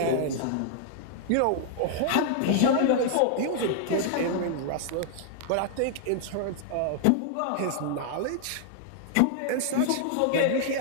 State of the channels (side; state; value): both; different; correlation -0.01